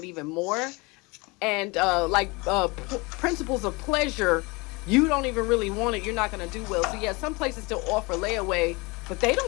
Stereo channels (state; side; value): quieter; right; 26.2 dB